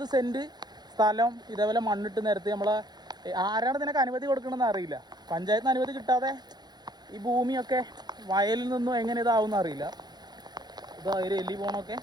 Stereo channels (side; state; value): left; late; 0.20 ms